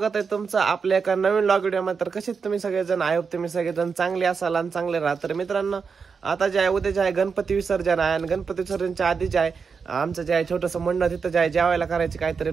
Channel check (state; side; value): quieter; left; 5.6 dB